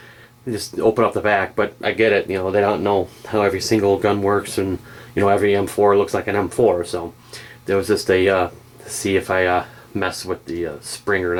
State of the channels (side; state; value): both; identical; correlation 1.00